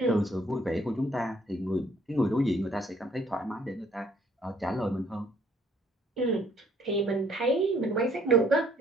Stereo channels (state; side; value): normal; both; correlation 0.63